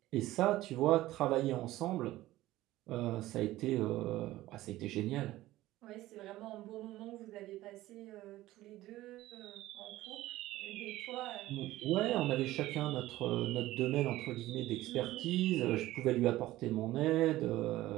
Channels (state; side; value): quieter; left; 16.3 dB